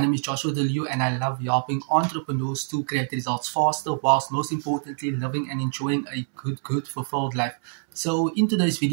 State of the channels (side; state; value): left; silent; 62 dB below the other